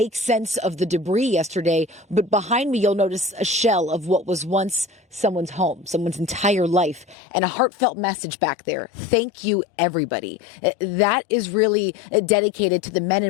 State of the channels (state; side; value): drops out; right; at 7.2 s